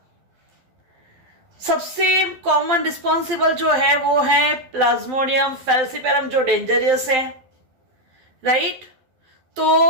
सबसे common responsible जो है वो है Plasmodium falciparum, जो dangerous है, right?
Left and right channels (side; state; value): left; late; 12 ms